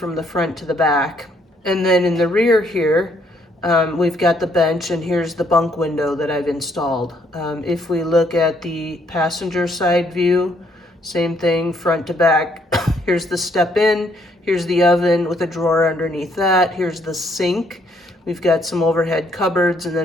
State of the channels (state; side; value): normal; both; correlation 0.69